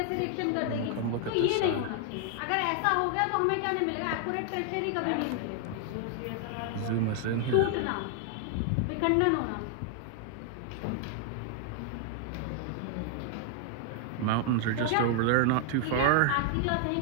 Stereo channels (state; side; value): different; both; correlation 0.00